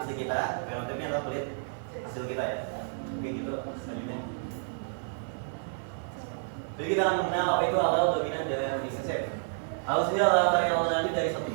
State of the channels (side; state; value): left; silent; 58 dB below the other